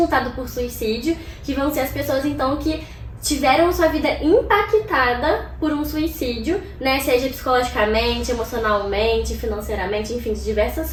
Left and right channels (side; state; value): both; identical; correlation 1.00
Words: por suicídio, que vão ser as pessoas então que tiveram sua vida impactada por um suicídio, né? Seja psicologicamente, emocionalmente, financeiramente, enfim, de